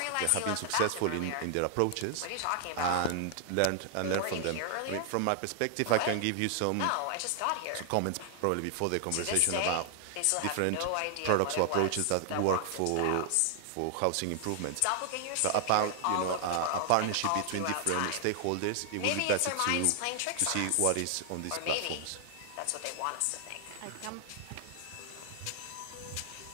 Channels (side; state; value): both; different; correlation 0.00